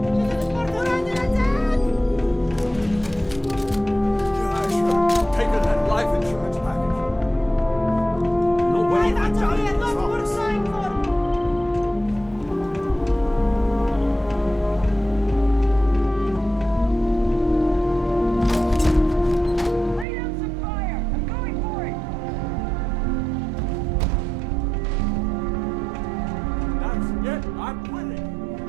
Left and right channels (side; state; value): left; drops out; at 20.1 s